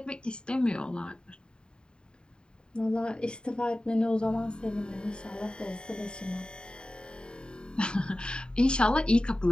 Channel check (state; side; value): late; right; 0.049 ms